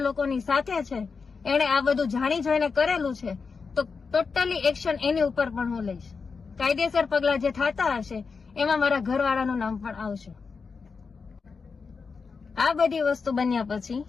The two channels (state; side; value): quieter; right; 5.0 dB